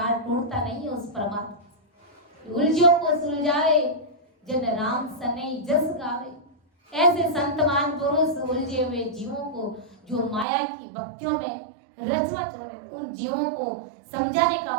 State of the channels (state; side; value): drops out; left; at 10.5 s